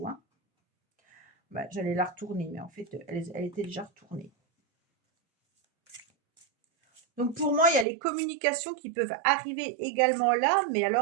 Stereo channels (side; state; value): left; drops out; at 7.9 s